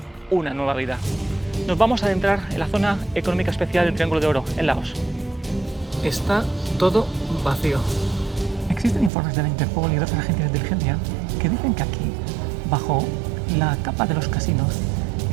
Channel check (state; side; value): drops out; left; at 9.1 s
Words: una nueva vida. Nos vamos a adentrar en la zona económica especial del Triángulo de Oro en Laos. Está todo vacío. Existen informes de la Interpol y de otras agencias de inteligencia que dicen que aquí, bajo la capa de los casinos,